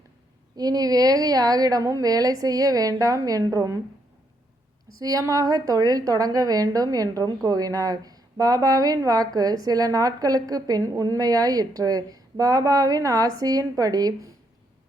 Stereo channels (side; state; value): both; normal; correlation 0.76